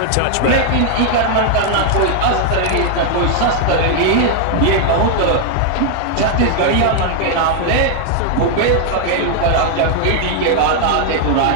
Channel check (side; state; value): both; different; correlation 0.00